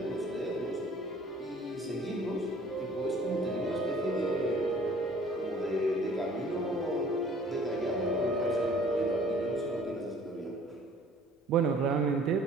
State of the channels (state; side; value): normal; both; correlation 0.53